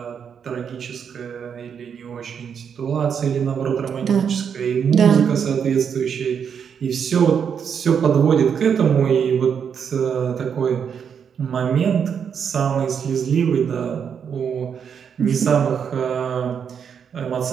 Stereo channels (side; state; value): left; quieter; 7.3 dB